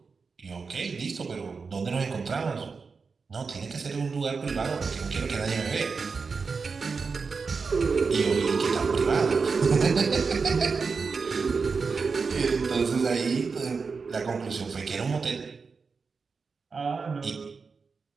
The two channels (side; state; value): left; quieter; 4.9 dB